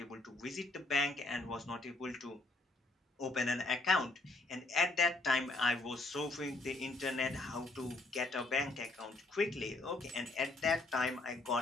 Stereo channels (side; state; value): right; quieter; 3.1 dB